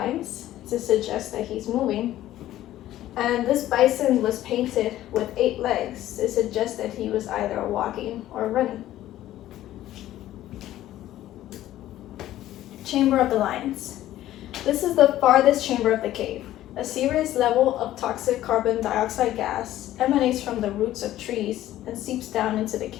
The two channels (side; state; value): right; quieter; 13.8 dB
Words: to suggest that he's moving, and this bison was painted with 8 legs to suggest that he was either walking or running. Chamber of the Lions. This is the farthest chamber of the cave. A serious level of toxic carbon dioxide gas emanates from the roots of trees and seeps down into the